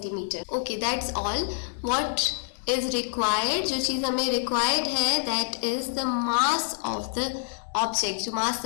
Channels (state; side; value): silent; right; digital silence